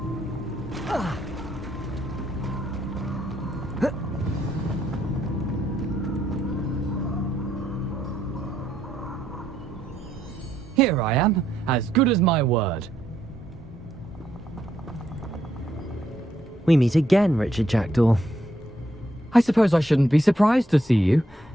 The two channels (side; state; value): both; normal; correlation 0.75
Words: Here I am, as good as my word. We meet again, Richard Jackdaw. I suppose I shouldn't be surprised to see you.